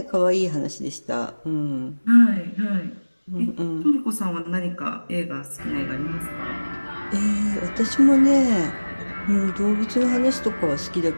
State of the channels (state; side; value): inverted; both; correlation -1.00